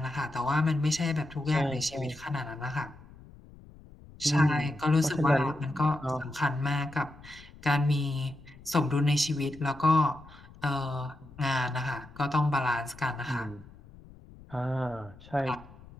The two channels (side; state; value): left; noise; rumble, 21 dB below the sound